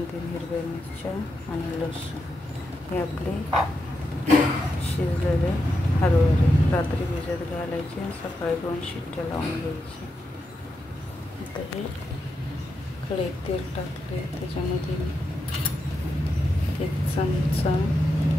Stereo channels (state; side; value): normal; both; correlation 0.85